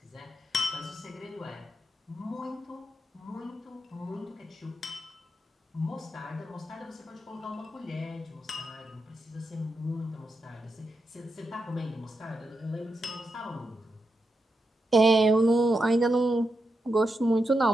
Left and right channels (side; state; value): both; normal; correlation 0.86